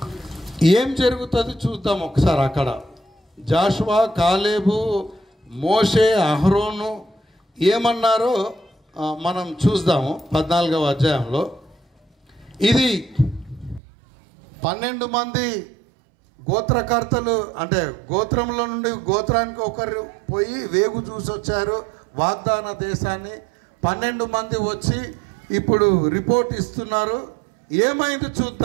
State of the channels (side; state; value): left; drops out; at 13.8 s